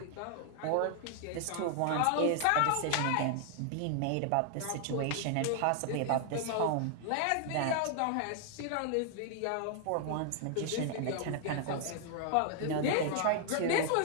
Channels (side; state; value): both; different; correlation 0.00